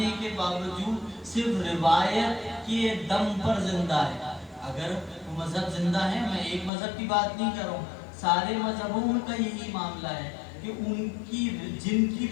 کے باوجود صرف روایت کے دم پر زندہ ہے۔ اگر وہ مذہب زندہ ہے، میں ایک مذہب کی بات نہیں کر رہا ہوں، سارے مذہبوں کا یہی معاملہ ہے کہ ان کی جن کی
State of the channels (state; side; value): drops out; right; at 6.7 s